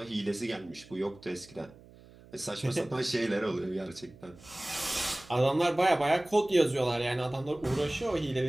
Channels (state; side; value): noise; right; hum, 23 dB below the sound